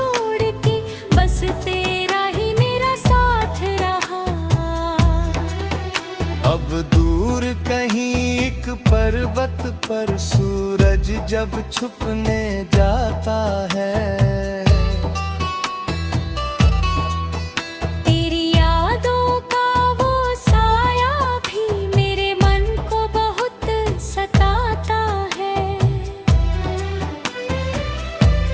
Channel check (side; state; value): both; identical; correlation 1.00